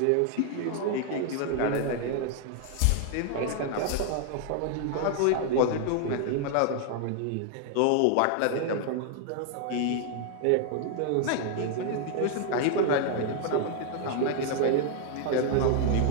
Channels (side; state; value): both; different; correlation 0.00